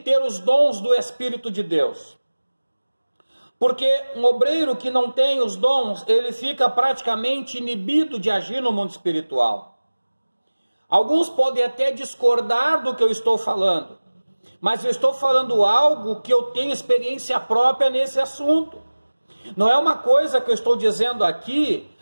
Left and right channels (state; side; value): inverted; both; correlation -1.00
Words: os dons do Espírito de Deus. Porque um obreiro que não tem os dons, ele fica praticamente inibido de agir no mundo espiritual. Alguns podem até discordar do que eu estou falando, mas eu estou falando algo que eu tenho experiência própria nesse assunto. Não é uma coisa que eu estou dizendo aqui